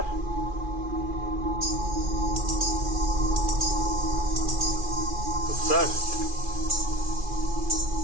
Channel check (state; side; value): late; left; 2.4 ms